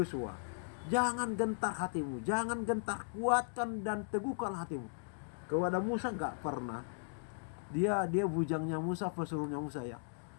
jangan gentar hatimu, jangan gentar, kuatkan dan teguhkan hatimu. Kepada Musa nggak pernah. Dia bujangnya Musa, pesuruhnya Musa ya.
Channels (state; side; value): silent; right; digital silence